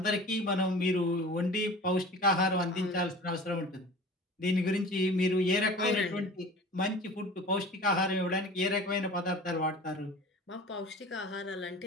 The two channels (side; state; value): both; normal; correlation 0.40